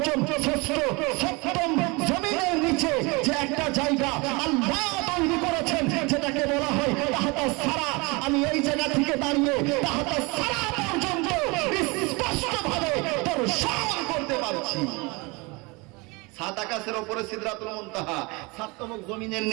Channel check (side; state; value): left; quieter; 26.8 dB